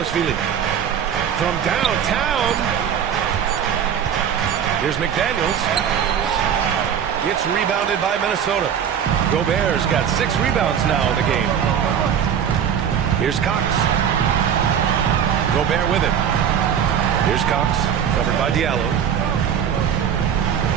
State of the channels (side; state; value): left; quieter; 8.5 dB